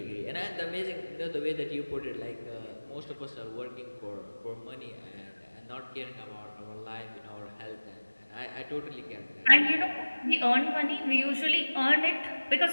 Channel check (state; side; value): inverted; both; correlation -1.00